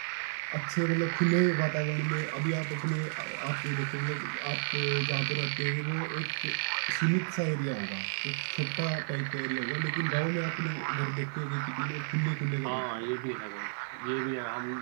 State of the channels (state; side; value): silent; left; digital silence